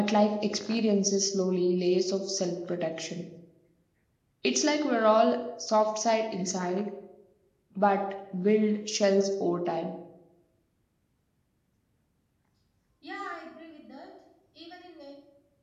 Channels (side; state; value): both; identical; correlation 1.00